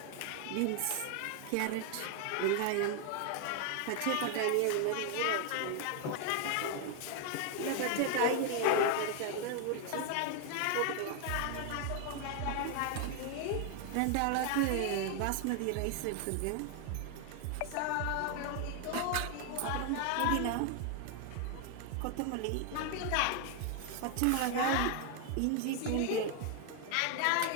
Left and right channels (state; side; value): different; both; correlation 0.00